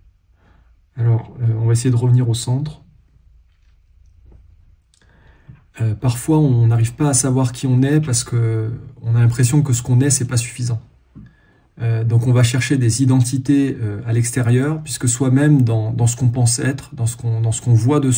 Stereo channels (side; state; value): both; identical; correlation 1.00